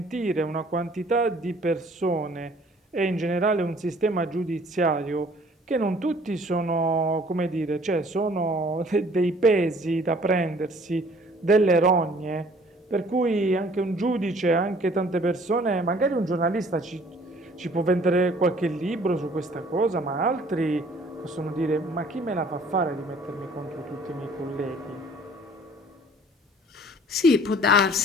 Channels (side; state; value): both; normal; correlation 0.55